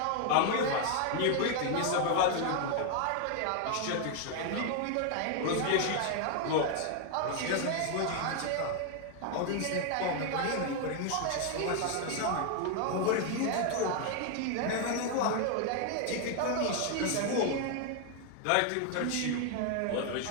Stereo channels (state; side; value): different; both; correlation 0.00